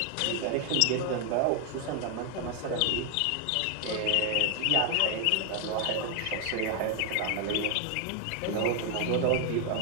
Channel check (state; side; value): different; both; correlation 0.00